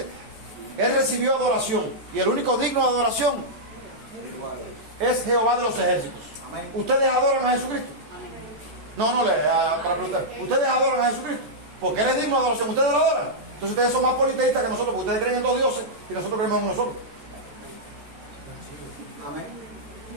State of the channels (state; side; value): late; left; 14 ms